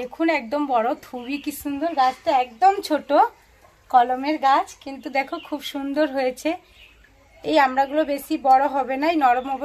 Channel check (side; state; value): both; identical; correlation 1.00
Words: একদম বড়, খুবই কি সুন্দর, গাছটা একদম ছোট কলমের গাছ, কিন্তু দেখো খুব সুন্দর হয়েছে। এই আমড়াগুলো বেশি বড় হবে না, এই নরম